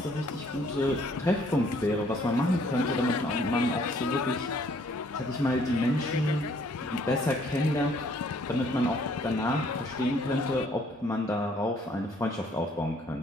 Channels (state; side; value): normal; both; correlation 0.63